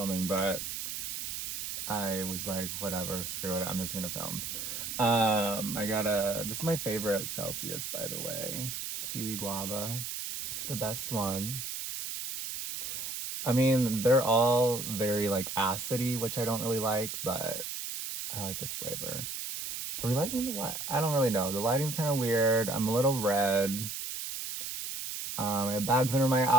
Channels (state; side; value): noise; right; hiss, 5 dB below the sound